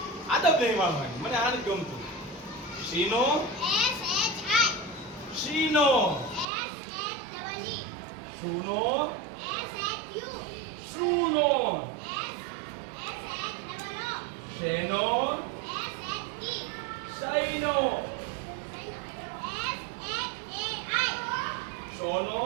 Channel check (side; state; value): left; drops out; at 6.5 s